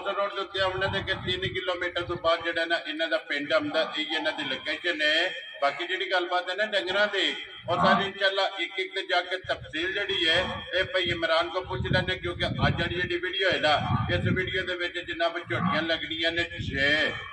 रोड के उत्ते आने के 3 किलोमीटर तो बाद जो ना इन्हों का पिंड आता यही इन्हों की लोकेशन है। बाकी जी गलबात है ना डंगर की और सारी इंशाल्लाह एक जाके तफसील जी है ये भाई इमरान को पूछ लेने क्योंकि अज जी वीडियो है ना इस वीडियो के जनाब झोटियां लगनिया ने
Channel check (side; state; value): both; identical; correlation 1.00